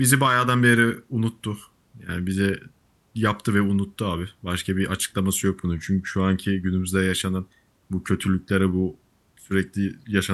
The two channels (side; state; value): both; identical; correlation 1.00